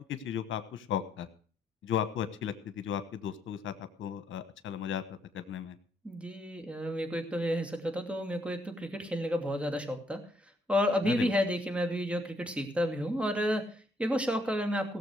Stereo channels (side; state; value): both; normal; correlation 0.71